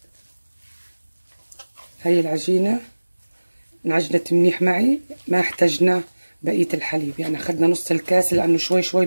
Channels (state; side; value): inverted; both; correlation -1.00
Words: العجينة انعجنت منيح معي، ما احتاجنا بقية الحليب، يعني اخذنا نص الكاس، لانه شوي شوي